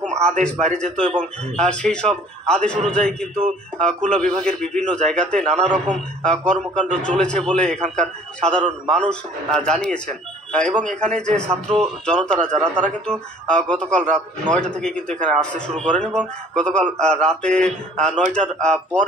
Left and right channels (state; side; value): normal; both; correlation 0.52